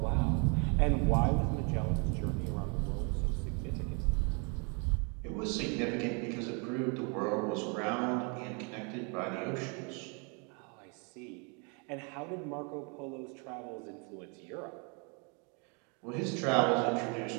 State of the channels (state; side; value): quieter; left; 35.0 dB